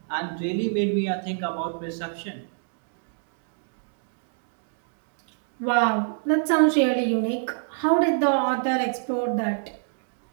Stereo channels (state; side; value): silent; left; digital silence